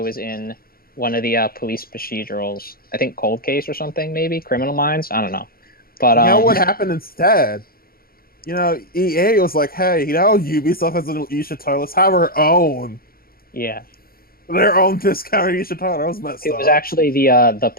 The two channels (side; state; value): right; late; 0.43 ms